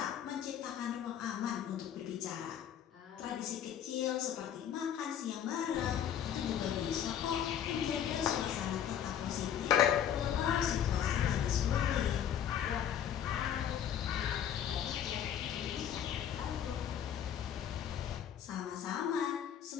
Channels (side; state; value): right; quieter; 9.5 dB